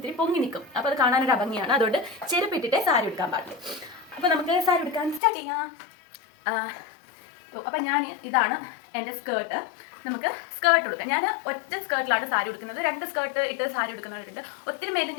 പൊങ്ങി നിൽക്കും. അപ്പോൾ അത് കാണാനൊരു ഭംഗിയാണ്. അതുകൊണ്ട് ചെരുപ്പിട്ടിട്ടേ സാരി ഉടുക്കാൻ പാടില്ല. അപ്പോൾ നമുക്ക് സാരി ഉടുക്കാൻ സ്റ്റാർട്ട് ചെയ്യാം. അപ്പം ഇതാണ് എൻ്റെ സ്കേർട്ട്. നമുക്ക് സ്കേർട്ട് ഉടുക്കാം. ഞാൻ ഒറ്റ സ്കേർട്ടിലാണ് സാരി ഉടുക്കുന്നത്. 2 സ്കേർട്ട് ഇട്ട് സാരി ഉടുക്കുന്നവരുണ്ട്. ഒത്തിരി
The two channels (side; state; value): right; drops out; at 5.2 s